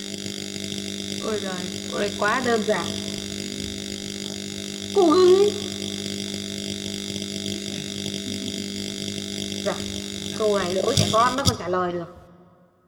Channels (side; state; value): both; identical; correlation 1.00